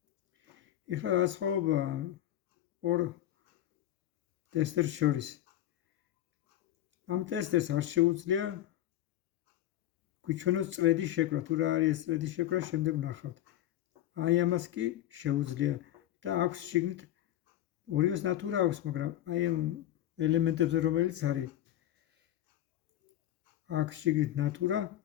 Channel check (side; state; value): right; quieter; 13.0 dB